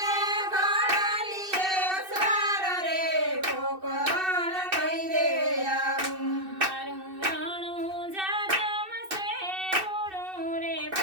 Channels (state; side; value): late; left; 2.6 ms